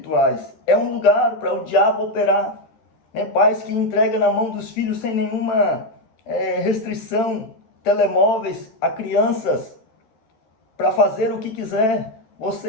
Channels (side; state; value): right; late; 13 ms